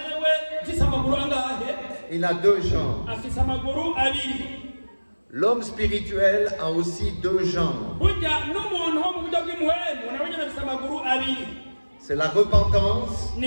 il a deux jambes. L'homme spirituel a aussi deux jambes. C'est la repentance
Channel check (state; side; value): inverted; both; correlation -1.00